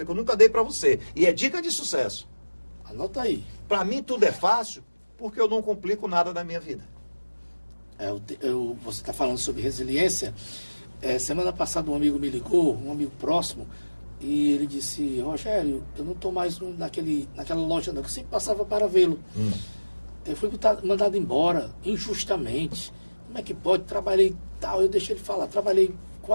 que eu nunca dei para você. E é dica de sucesso. Anota aí. Para mim tudo é fácil porque eu não complico nada na minha vida. Você está falando sobre resiliência. Semana passada um amigo me ligou, um amigo próximo, e ele disse, Rogério, eu não estou mais naquela loja não, que eu sempre passava para vê-lo. Eu fui mandado embora, injustamente. Como é que pode? Trabalhei tal, eu deixei ele falar, trabalhei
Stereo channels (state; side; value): inverted; both; correlation -1.00